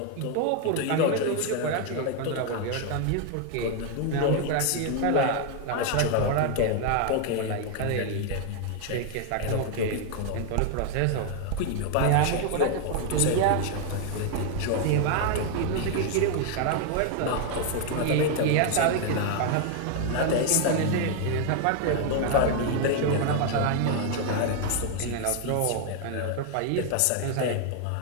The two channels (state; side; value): different; both; correlation 0.01